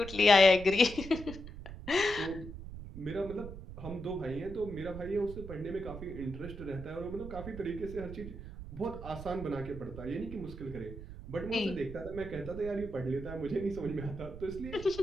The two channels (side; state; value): right; noise; rumble, 11 dB below the sound